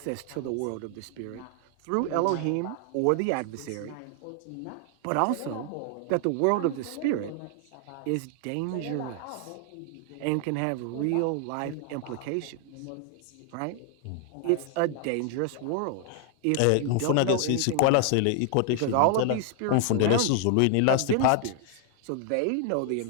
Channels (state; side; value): different; both; correlation 0.00